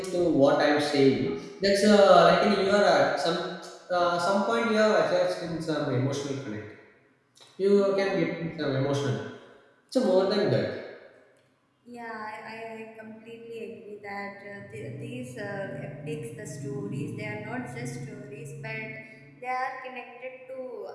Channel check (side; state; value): both; identical; correlation 1.00